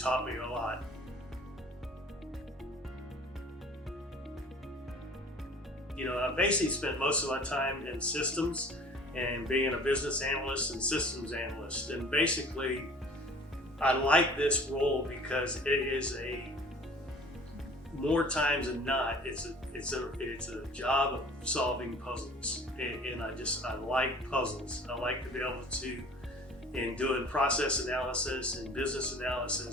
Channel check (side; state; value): both; normal; correlation 0.47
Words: me a lot. I basically spent most of my time in systems and being a business analyst and systems analyst. And basically, I like this role because it is more times than not, it's a job of solving puzzles. And I like puzzles. I like to be able to, in doing process analysis and business